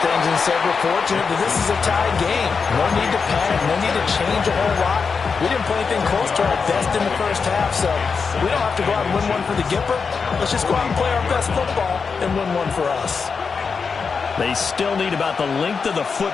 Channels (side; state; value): right; quieter; 5.3 dB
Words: things and said, we're fortunate that this is a tied game. No need to panic, no need to change a whole lot. We didn't play anything close to our best in the first half, so we don't have to go out and win one for the Gipper. Let's just go out and play our best football and win one for us. They still need about the length of the